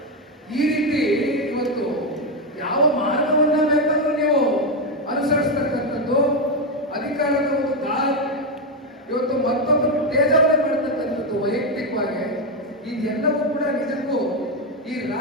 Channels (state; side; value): normal; both; correlation 0.07